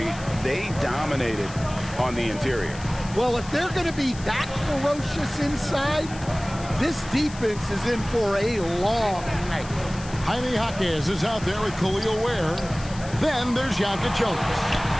they dominated on the interior. Well, if they're going to be that ferocious inside, this defense is in for a long night. Jaime Jaquez is out there with Khalil Ware. Then there's Ajaka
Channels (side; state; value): left; noise; hiss, 17 dB below the sound